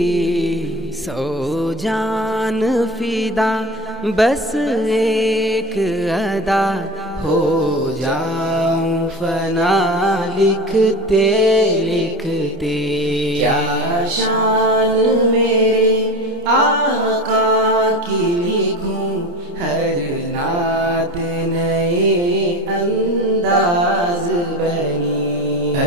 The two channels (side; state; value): both; normal; correlation 0.29